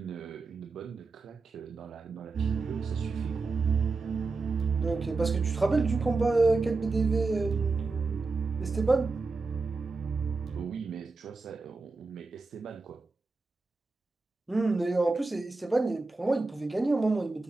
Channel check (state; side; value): quieter; left; 3.8 dB